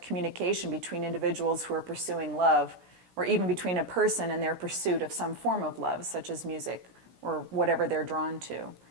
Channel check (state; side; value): late; left; 16 ms